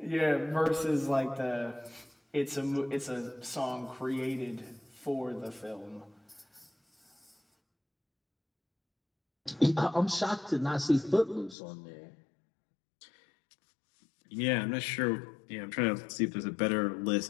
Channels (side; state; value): right; drops out; at 11.6 s